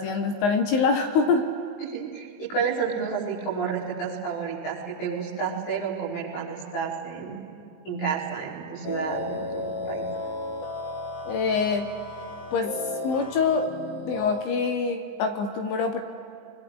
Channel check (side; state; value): right; late; 19 ms